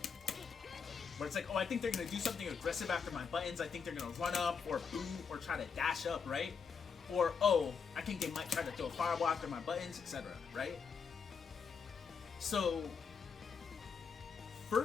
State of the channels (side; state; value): right; quieter; 6.0 dB